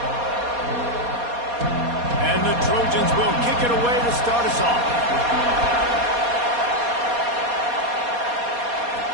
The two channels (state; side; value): late; left; 4.2 ms